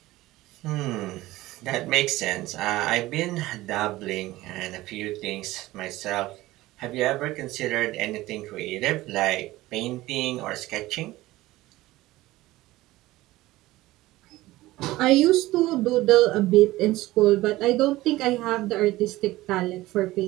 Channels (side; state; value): left; quieter; 17.6 dB